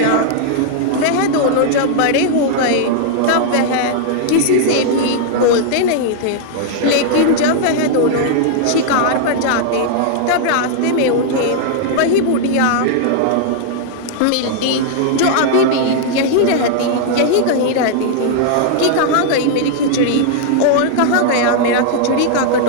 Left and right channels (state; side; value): different; both; correlation -0.01